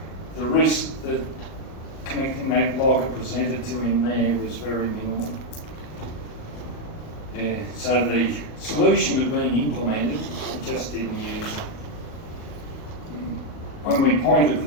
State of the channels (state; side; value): late; right; 38 ms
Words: The risk that connecting that logger presented to him there was very minimal. So the solution had been implemented, it just didn't use it. When we